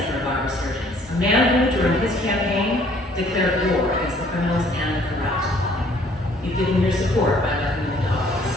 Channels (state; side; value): normal; both; correlation 0.59